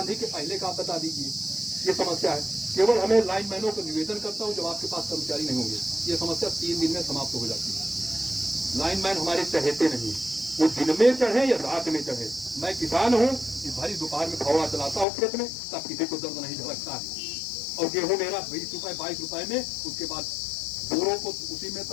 के पहले का बता दीजिए। ये समस्या है। केवल हमें लाइनमैनों को निवेदन करता हूं, जब आपके पास कर्मचारी नहीं होंगे, ये समस्या 3 दिन में समाप्त हो जाती है। लाइनमैन हमारे चहेते नहीं, वो दिन में चढ़े या रात में चढ़े। मैं किसान हूँ, इस भरी दोपहर में फौड़ा चलाता हूँ खेत में, तब किसी को दर्द नहीं झलकता है। और गेहूं मेरा 20 रुपए 22 रुपए में, उसके बाद बोरों को उसी में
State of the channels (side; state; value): right; drops out; at 15.1 s